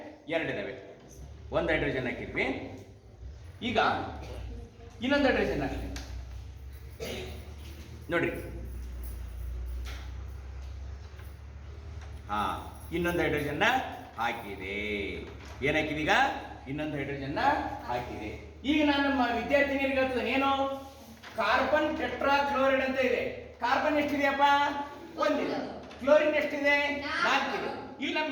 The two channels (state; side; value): identical; both; correlation 1.00